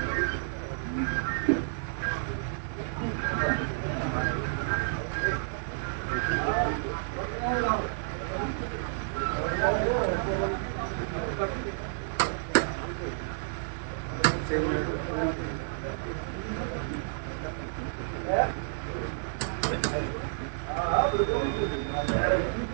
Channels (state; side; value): silent; left; 58 dB below the other